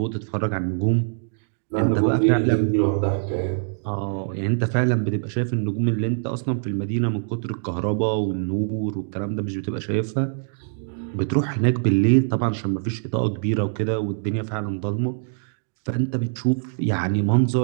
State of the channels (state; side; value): silent; left; digital silence